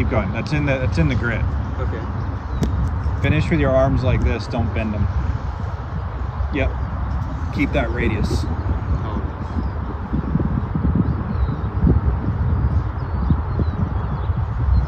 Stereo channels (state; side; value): identical; both; correlation 1.00